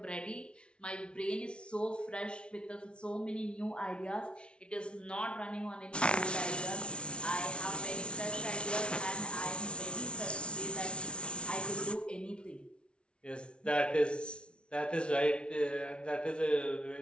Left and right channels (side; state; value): right; late; 0.058 ms